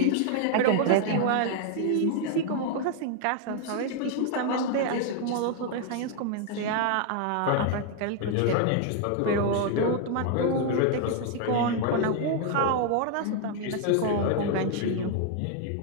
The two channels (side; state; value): both; different; correlation 0.00